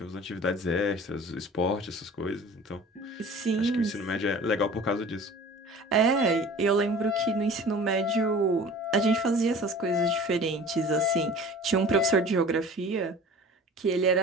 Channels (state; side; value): normal; both; correlation 0.43